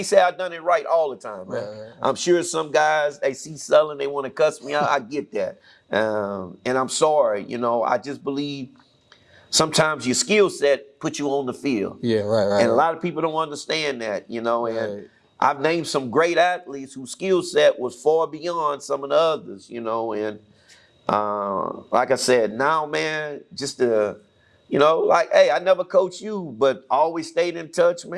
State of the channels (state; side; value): identical; both; correlation 1.00